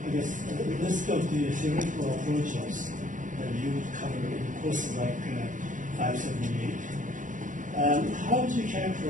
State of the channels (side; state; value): left; late; 0.37 ms